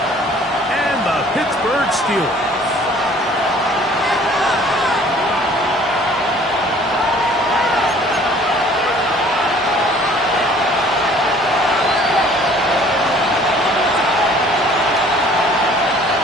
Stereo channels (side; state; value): both; normal; correlation 0.53